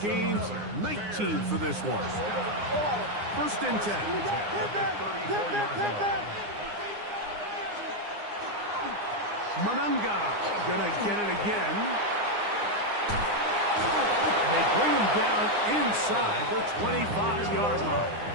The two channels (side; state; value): left; late; 9.7 ms